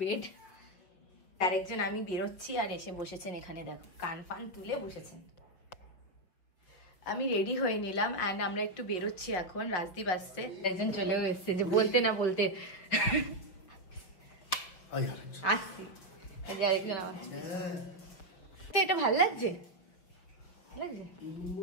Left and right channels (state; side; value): late; right; 5.5 ms